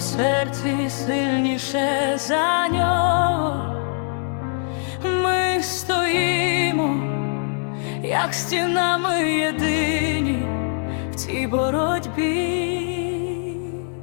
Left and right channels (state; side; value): silent; right; digital silence